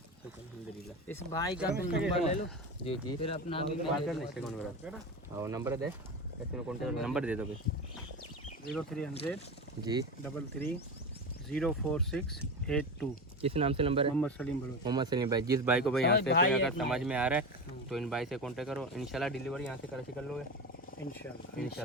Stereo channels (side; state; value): both; normal; correlation 0.23